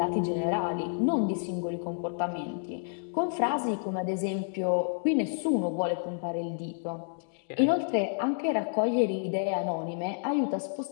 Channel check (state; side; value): silent; right; digital silence